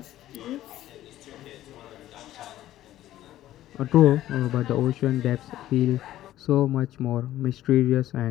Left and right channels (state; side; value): quieter; right; 13.8 dB